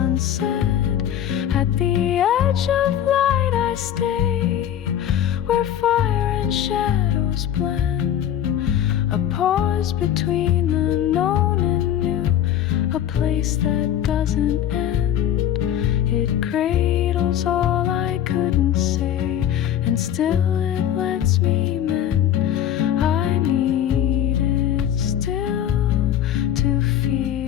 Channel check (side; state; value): right; quieter; 10.6 dB